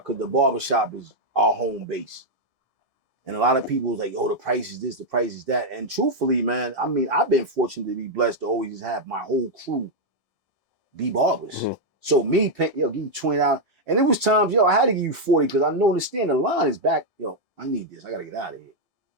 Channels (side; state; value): both; normal; correlation 0.00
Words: because the barbershop is our home base. And a lot of people was like, oh, the price is this, the price is that. And truthfully, man, I mean, I've been fortunate to be blessed to always have my whole crew be barbers. Mm-hmm. So me, give you $20. And it was times, I had to give you $40 because I understand the line is back. I need this. I got to get out of here.